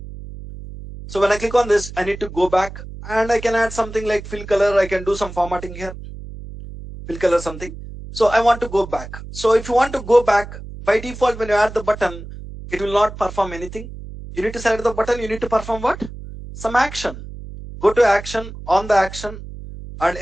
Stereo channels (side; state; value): right; noise; hum, 12 dB below the sound